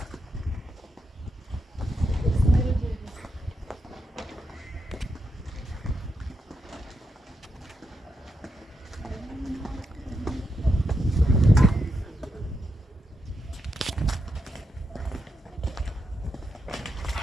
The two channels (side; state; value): both; normal; correlation 0.84